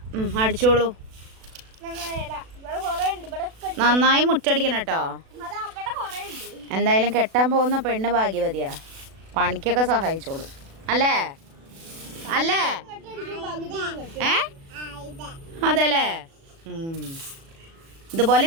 അടിച്ചോളൂ. നന്നായി മുറ്റടിക്കണം കേട്ടോ. എന്തായാലും കെട്ടാൻ പോകുന്ന പെണ്ണ് ഭാഗ്യവതിയാ, പണിക്കൊക്കെ സഹായിച്ചോളൂ. അല്ലേ അല്ലേ? അതെല്ലേ? ഇതുപോലെ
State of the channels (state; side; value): late; left; 36 ms